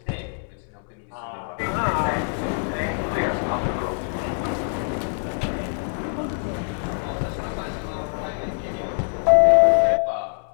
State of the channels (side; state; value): right; silent; digital silence